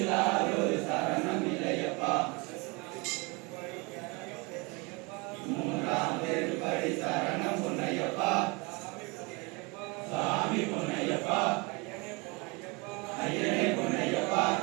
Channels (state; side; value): quieter; left; 28.2 dB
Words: சரணம் இல்லையப்பா மூன்றாம் திருப்படி சரணம் பொன்னையப்பா சாமி பொன்னையப்பா ஐயனே பொன்னையப்பா